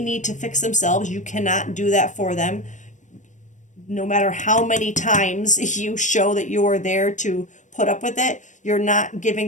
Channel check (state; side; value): late; right; 0.36 ms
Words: to fix themselves. You cannot do that for them. No matter how many times you show that you are there to put up with it, you're not giving